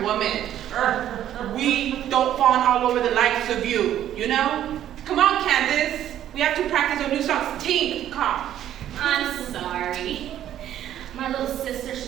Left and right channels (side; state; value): left; quieter; 11.4 dB